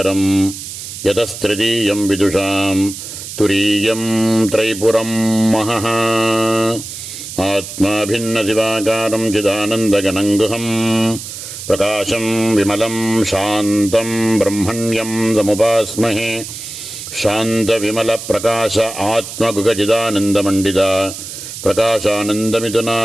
யதஸ்திருதீயம் விதுஷாம் துரீயம் த்ரைபுரம் மஹः. ஆத்மா பின்ன சிவாகாரம் சிதானந்தகணங்குஹம் பிரகாசம் விமலம் சாந்தம் பிரம்மண்யம் சமுபாஸ்மஹே. शांत विमल प्रकाश आत्मगुगचिदानंद मंडिता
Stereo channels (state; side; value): noise; right; hiss, 10 dB below the sound